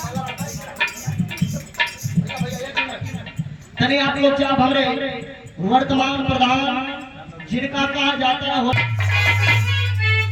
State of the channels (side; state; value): both; identical; correlation 1.00